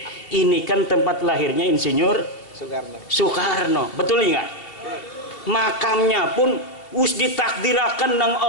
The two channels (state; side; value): late; right; 2.8 ms